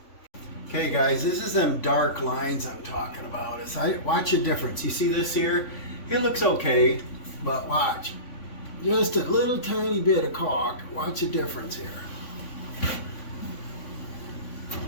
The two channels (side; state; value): right; late; 3.5 ms